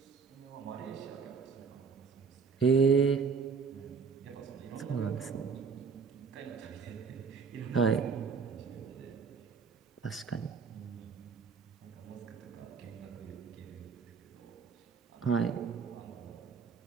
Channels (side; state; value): left; quieter; 5.6 dB